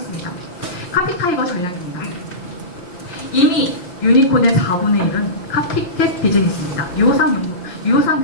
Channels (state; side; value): late; right; 5.8 ms